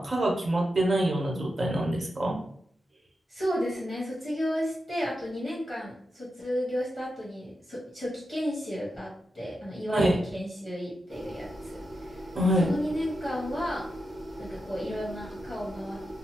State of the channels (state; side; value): normal; both; correlation 0.88